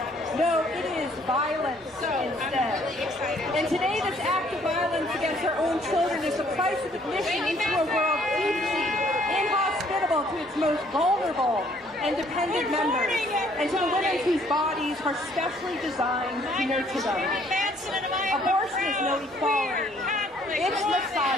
No, it is violence instead. I'm really excited. And today, this act of violence against our own children is the price of admission into a world deeply inhospitable to its most vulnerable and dependent members, and to the women whose bodies are specially designed to nurture them. Abortion is no equality. It's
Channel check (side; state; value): both; normal; correlation 0.62